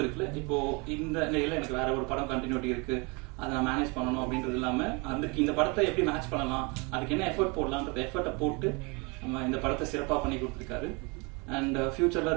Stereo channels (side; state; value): left; quieter; 29.7 dB